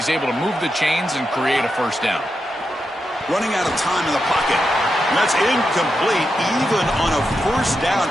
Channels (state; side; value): normal; both; correlation 0.87